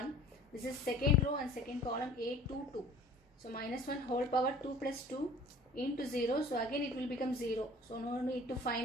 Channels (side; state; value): both; normal; correlation 0.48